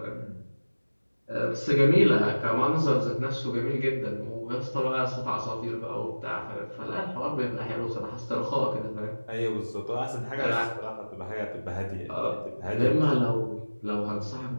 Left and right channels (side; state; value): both; inverted; correlation -1.00